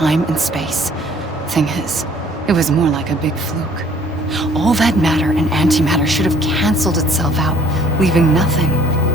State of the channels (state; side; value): normal; both; correlation 0.56